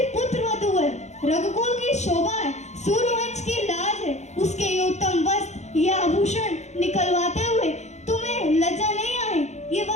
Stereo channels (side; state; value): right; late; 0.33 ms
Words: पुत्र वधू है, रघुकुल की शोभा है, सूर्यवंश की लाज है, उसके ये उत्तम वस्त्र, ये आभूषण निकलवाते हुए तुम्हें लज्जा नहीं आई? ये